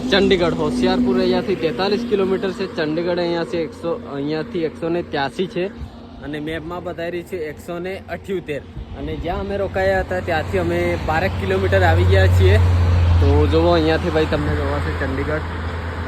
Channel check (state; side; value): identical; both; correlation 1.00